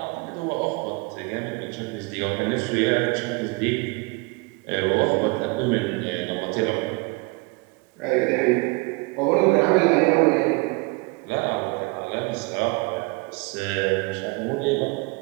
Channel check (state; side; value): quieter; left; 27.8 dB